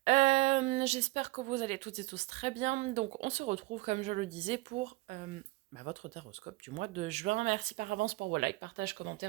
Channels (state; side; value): quieter; left; 20.0 dB